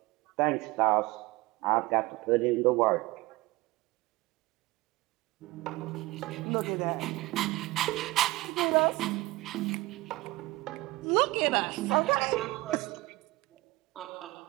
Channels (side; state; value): left; quieter; 20.4 dB